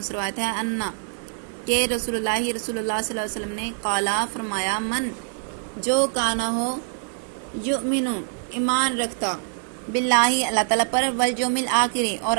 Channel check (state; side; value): silent; left; digital silence